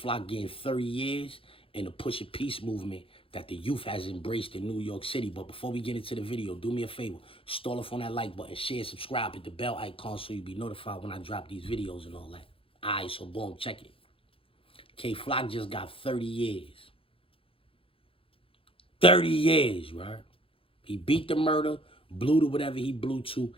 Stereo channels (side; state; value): right; late; 0.27 ms